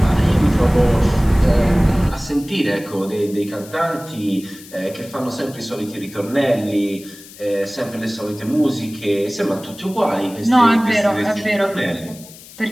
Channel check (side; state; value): left; noise; hiss, 19 dB below the sound